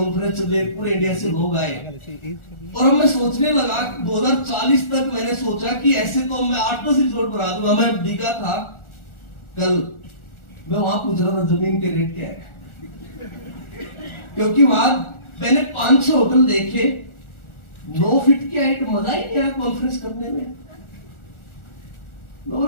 चले, पूरे इंडिया से लोग आए। और मैं सोचने लगा 2040 तक मैंने सोचा कि ऐसे तो मैं 8-10 रिजॉर्ट बना दूंगा। मैं दिखा था कल, मैं वहां पूछ रहा था जमीन के रेट क्या है, क्योंकि वहां मैंने 5-6 होटल देखे, 9 फीट की हाइट, मजा ही नहीं आया कॉन्फ्रेंस करने में। मैं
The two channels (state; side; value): late; right; 1.4 ms